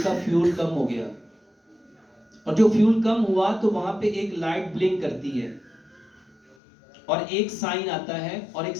کا فیول کم ہو گیا، اور جو فیول کم ہوا تو وہاں پہ ایک لائٹ بلنک کرتی ہے اور ایک سائن آتا ہے اور ایک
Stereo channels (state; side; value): drops out; right; at 6.6 s